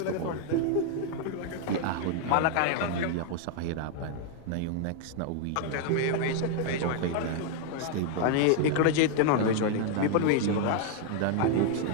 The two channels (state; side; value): different; both; correlation 0.00